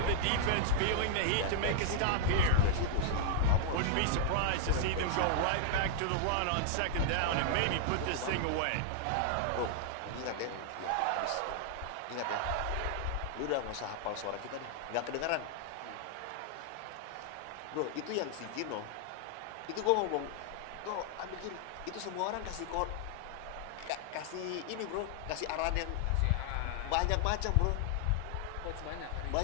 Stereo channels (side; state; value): both; different; correlation -0.01